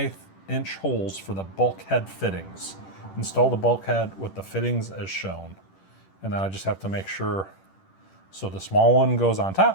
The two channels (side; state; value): right; late; 10 ms